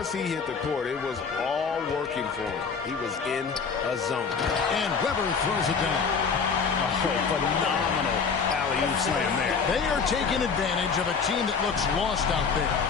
he hit the court, it was all working for him. He was in a zone. And Weber throws it down. Oh, phenomenal alley-oop slam there. They are taking advantage of a team that looks lost out there.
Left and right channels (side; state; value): right; quieter; 5.6 dB